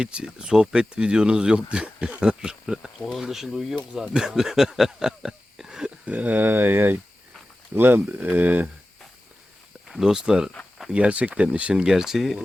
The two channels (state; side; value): normal; both; correlation 0.95